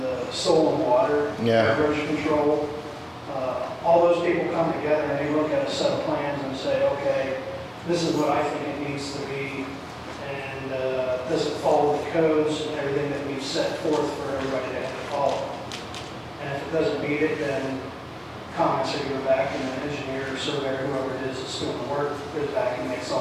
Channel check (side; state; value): both; identical; correlation 1.00